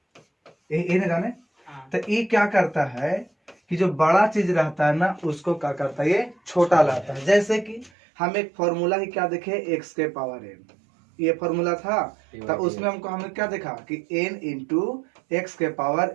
ये नहीं जाने। तो ये क्या करता है कि जो बड़ा चीज रहता है ना उसको क्या करता है, ये छोटा लाता है। जैसे कि हम एक फॉर्मूला ही क्या देखे, एक्स के पावर एन, ये फॉर्मूला था। तो उसमें हमको हमने क्या देखा कि n इंटू एक्स के पावर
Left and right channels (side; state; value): left; drops out; at 7.9 s